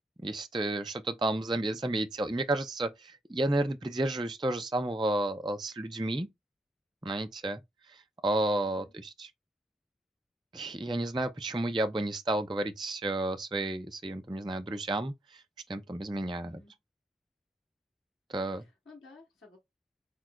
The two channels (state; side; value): normal; both; correlation 0.76